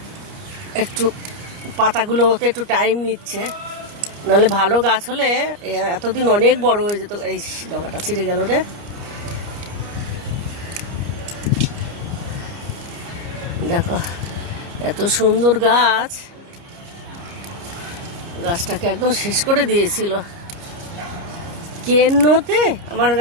একটু পাতাগুলো হতে একটু টাইম নিচ্ছে। নাহলে ভালো গাছ হলে এতদিন অনেক বড় হয়ে যেত। এই ডগাটা ছিঁড়ে গেল রে। দেখো এত সুন্দর গাছ, গাছটাকে একদম শেষ করে দিয়েছিল। কেন্নতে আমার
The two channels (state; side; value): late; left; 29 ms